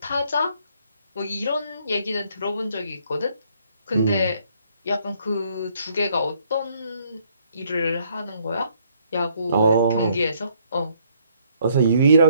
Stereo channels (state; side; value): inverted; both; correlation -0.67